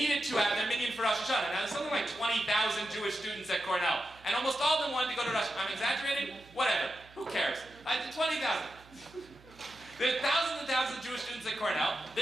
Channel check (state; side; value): noise; right; hum, 24 dB below the sound